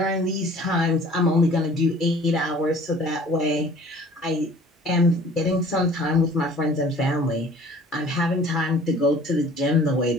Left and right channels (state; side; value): normal; both; correlation 0.49